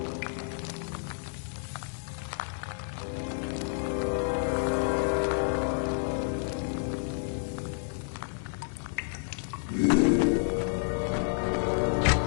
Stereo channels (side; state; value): right; silent; digital silence